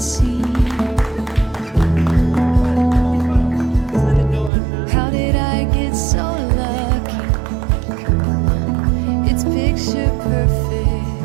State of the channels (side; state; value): left; drops out; at 4.5 s